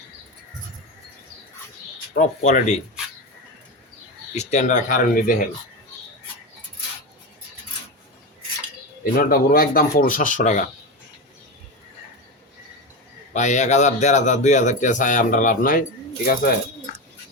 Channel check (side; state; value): both; normal; correlation 0.18